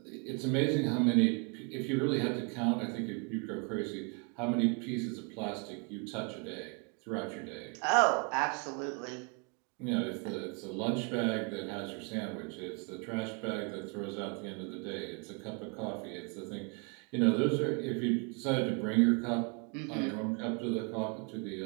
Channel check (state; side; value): quieter; left; 35.1 dB